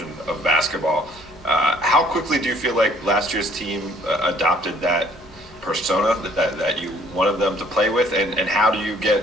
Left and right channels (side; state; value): both; normal; correlation 0.59